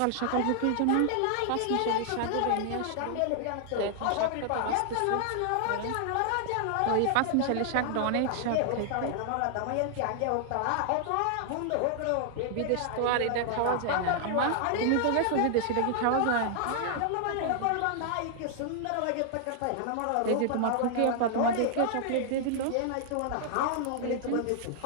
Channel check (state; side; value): different; both; correlation -0.01